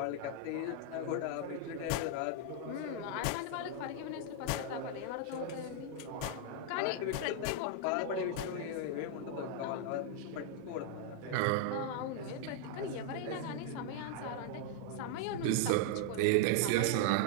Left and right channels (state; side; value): different; both; correlation 0.00